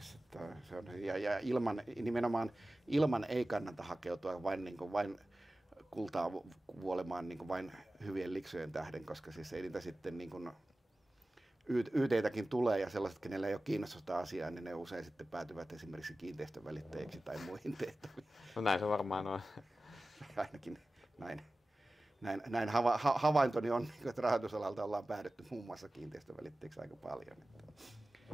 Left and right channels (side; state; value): both; normal; correlation 0.96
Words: että se on, ja nimenomaan ilman ei kannata hakeutua vain kultaa vuolemaan niin vain hyvien liksojen tähden, koska siis ei niitä sitten niin kuin YT:täkin tulee ja sellaiset, kenellä ei ole kiinnostusta asiaa, niin ne usein sitten päätyvät esimerkiksi kiinteistön välittäjiksi tai muihin tehtäviin. No näin se varmaan on. Ainakin näin havaintoni on, että rahoitusalalta ollaan päädytty muun muassa kiinteistön välittäjiksi aika paljon.